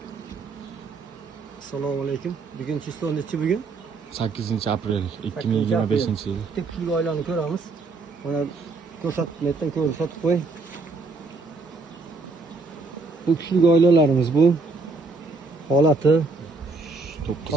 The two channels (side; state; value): left; quieter; 3.8 dB